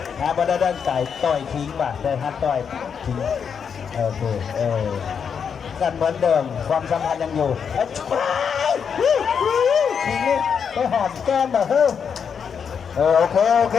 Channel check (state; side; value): quieter; right; 6.9 dB